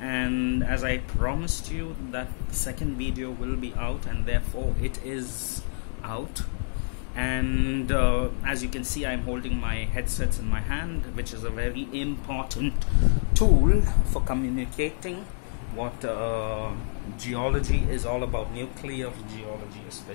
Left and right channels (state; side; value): silent; right; digital silence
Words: as I promised you, that the second video will be out, and therefore it is out. And as you can see, I'm holding my headsets in my hand, which is a very important tool for communicating what geology is all about, nuclear geology